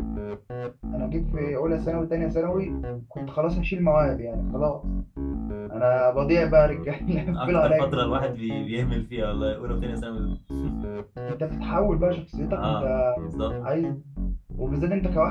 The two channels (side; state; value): both; identical; correlation 1.00